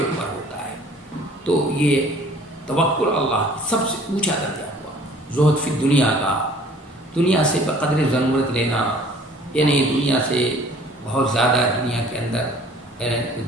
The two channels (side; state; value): both; normal; correlation 0.52